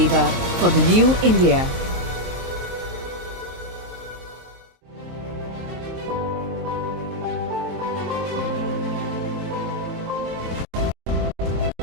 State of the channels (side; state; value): left; late; 23 ms